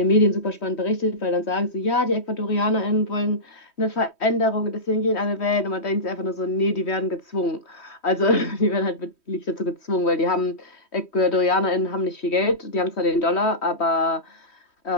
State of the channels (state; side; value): late; right; 3.1 ms